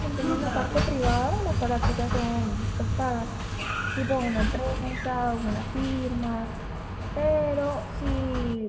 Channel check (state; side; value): identical; both; correlation 1.00